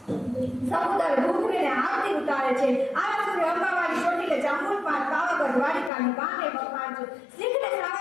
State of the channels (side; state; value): right; drops out; at 5.9 s